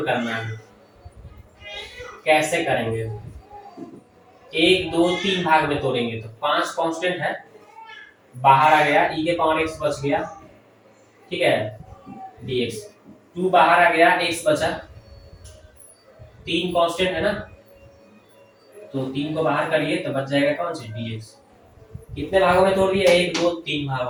करना है कैसे करेंगे, 1 2 3 भाग में तोड़ेंगे, तो 5 कांस्टेंट है, बाहर आ गया, e के पावर x बच गया, ठीक है, dx, 2 बाहर आ गया, x बचा, 3 कांस्टेंट है ना, तो 3 को बाहर करिए तो बच जाएगा कौन सी, dx, कितने भागों में तोड़ दिया, 1 2 3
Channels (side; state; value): both; identical; correlation 1.00